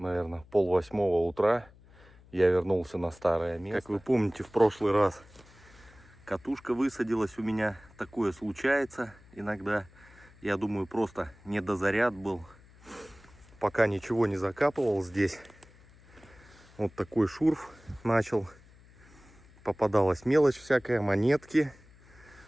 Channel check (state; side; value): noise; left; hum, 25 dB below the sound